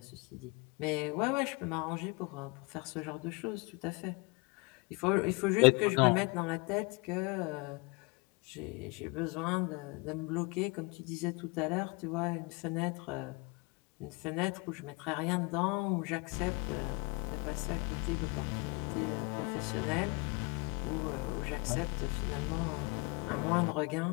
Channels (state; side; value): quieter; right; 29.3 dB